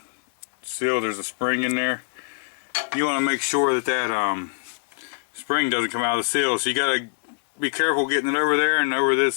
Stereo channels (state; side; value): silent; right; digital silence